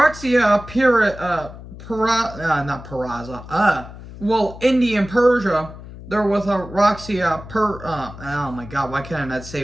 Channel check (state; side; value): noise; left; hum, 15 dB below the sound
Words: Indy and Persia, they're with Roxia oh my God, why can't I not say